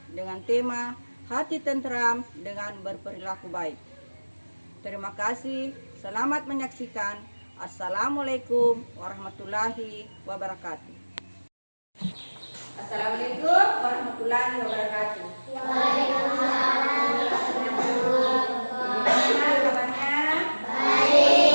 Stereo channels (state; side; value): inverted; both; correlation -1.00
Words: dengan tema Hati Tentram dengan Berperilaku Baik. Terima kasih, selamat menyaksikan. Assalamualaikum warahmatullahi wabarakatuh. Assalamualaikum warahmatullahi wabarakatuh. Waalaikumsalam.